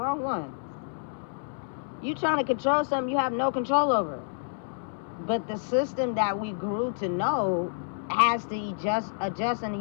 one. You trying to control something you have no control over. But the system that we grew to know has to adjust and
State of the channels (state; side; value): silent; right; 59 dB below the other